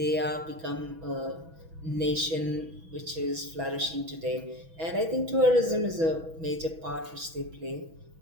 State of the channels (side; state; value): left; late; 6.1 ms